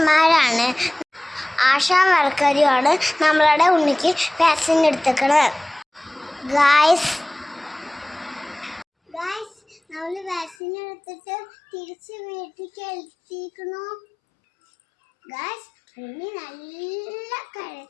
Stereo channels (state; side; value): drops out; right; at 10.6 s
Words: ആശാ വർക്കറുമാണ് നമ്മളുടെ ഉണ്ണിക്ക് വാക്സിൻ എടുത്തേക്കണത്. ഗായ്സ് നമ്മൾ വാക്സിൻ എടുത്തിട്ട് തിരിച്ച് വീട്ടിലേക്ക് എത്തിക്കണു. ഗായ്സ് ഉണ്ണി നല്ല